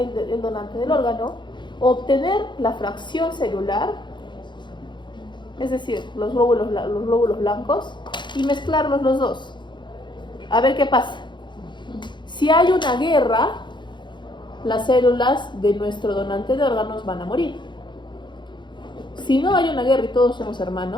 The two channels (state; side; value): late; right; 0.22 ms